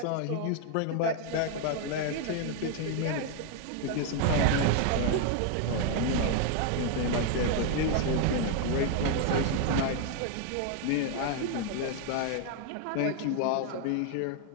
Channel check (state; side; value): different; both; correlation 0.00